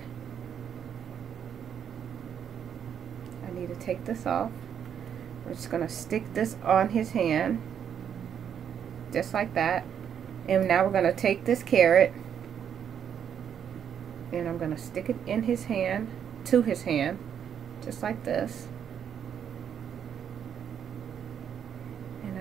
I need to take this off. We're just going to stick this on his hand, just like that. And now we're going to take this carrot, and I'm going to stick it in his hand, to his hand, just like this. And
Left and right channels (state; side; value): quieter; left; 8.5 dB